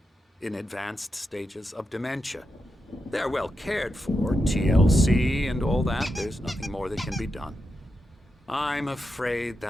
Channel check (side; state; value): both; normal; correlation 0.87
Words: in advanced stages of dementia. They're well cared for, TLC and all that. There's nothing more that can be done. I'm afraid